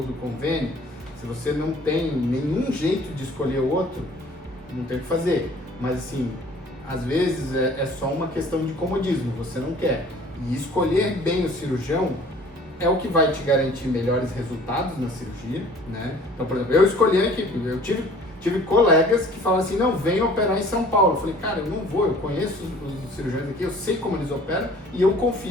do convênio. Se você não tem nenhum jeito de escolher outro, não tem o que fazer. Mas assim, às vezes é só uma questão de comodismo, você não quer. E escolher bem o cirurgião é o que vai te garantir melhores resultados na cirurgia, né? Então, por exemplo, eu escolhi a equipe, eu tive colegas que falam assim, não, vem operar em São Paulo. Eu falei, cara, eu não vou, eu conheço os cirurgiões aqui, eu sei como eles operam e eu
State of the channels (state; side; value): normal; both; correlation 0.51